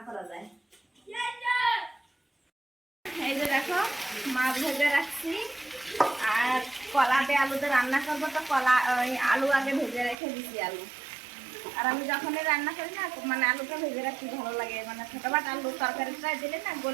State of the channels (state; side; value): drops out; left; at 10.2 s